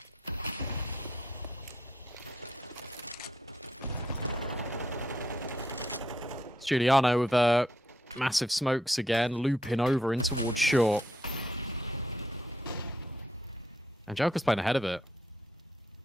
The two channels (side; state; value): both; normal; correlation 0.75